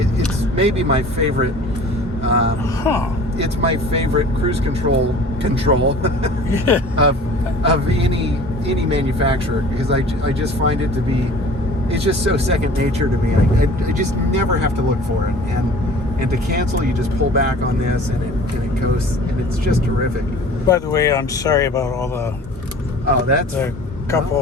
It's maybe my favorite. It's my favorite cruise control of any manufacturer, because I just find it to be, it's just so second nature to me. I just never have to look for it, and to cancel, you just pull back on this, and it goes, and it's just terrific. By the way, I'm sorry about all the cup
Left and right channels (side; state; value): both; normal; correlation 0.45